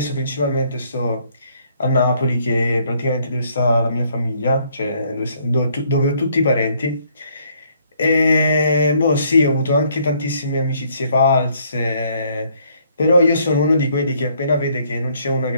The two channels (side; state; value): both; inverted; correlation -0.67